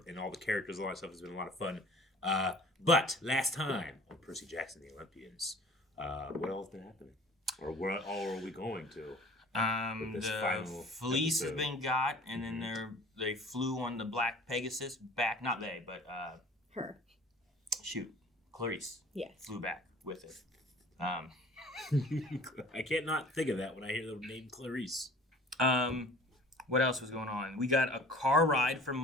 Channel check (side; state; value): both; normal; correlation 0.47